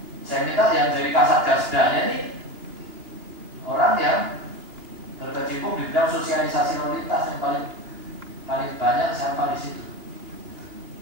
Saya minta yang dari Kasatgasdanya ini orang yang berkecimpung di bidang sosialisasi lalu lintas yang paling banyak siapa di situ.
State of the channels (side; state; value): left; late; 2.8 ms